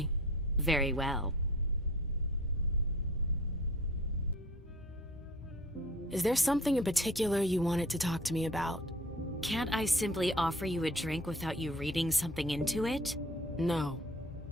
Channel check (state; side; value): normal; both; correlation 0.46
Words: Very well. Is there something in particular you wanted to talk to me about? Can't I simply offer you a drink without you reading something into it? No.